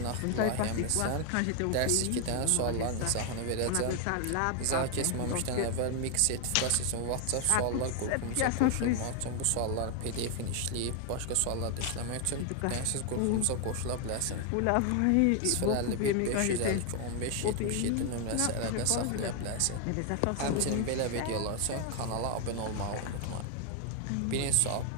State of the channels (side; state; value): both; different; correlation 0.00